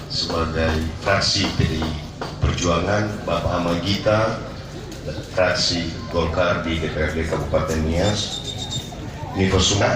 sebagai fraksi PDI Perjuangan, Bapak Ahmad Gita fraksi Golkar di DPRD Kabupaten Nias, Niko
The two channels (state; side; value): identical; both; correlation 1.00